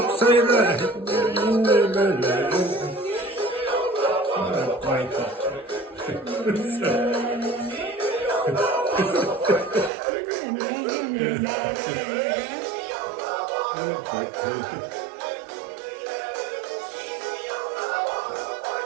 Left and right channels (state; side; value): drops out; left; at 9.9 s